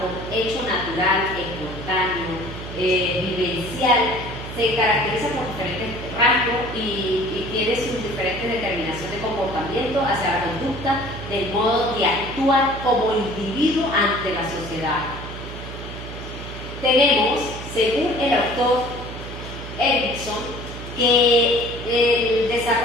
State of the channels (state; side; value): noise; right; hum, 10 dB below the sound